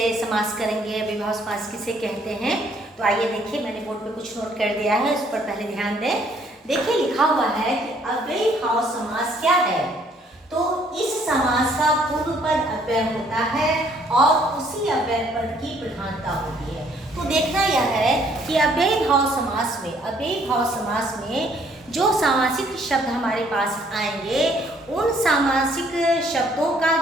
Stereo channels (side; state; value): both; normal; correlation 0.64